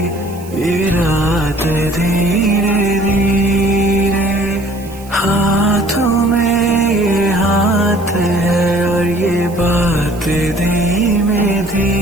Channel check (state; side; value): noise; right; hiss, 21 dB below the sound